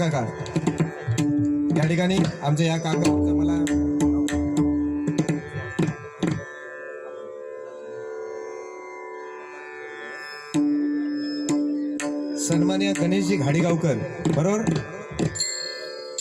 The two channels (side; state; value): both; identical; correlation 1.00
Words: या ठिकाणी आमच्या या काका मला सन्माननीय गणेशजी घाडीगावकर, बरोबर,